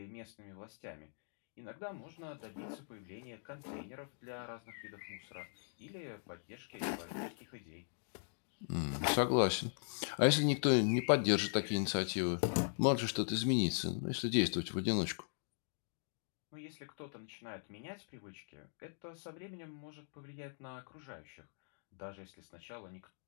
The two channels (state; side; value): silent; right; digital silence